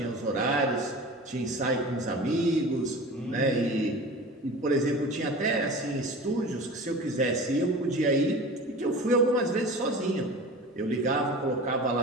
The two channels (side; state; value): both; normal; correlation 0.36